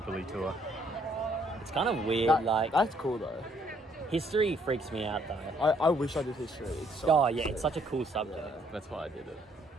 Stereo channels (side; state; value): both; normal; correlation 0.67